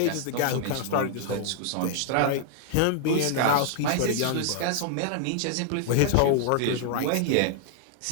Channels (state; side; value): different; both; correlation 0.00